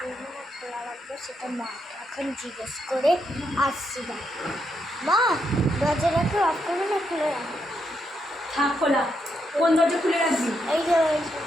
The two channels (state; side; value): normal; both; correlation 0.80